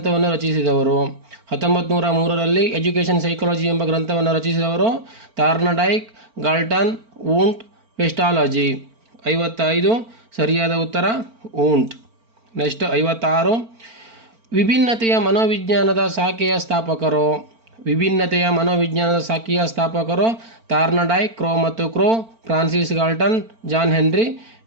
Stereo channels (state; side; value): late; left; 4.4 ms